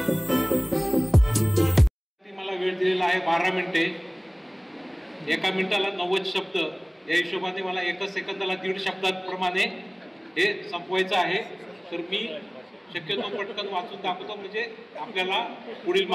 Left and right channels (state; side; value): identical; both; correlation 1.00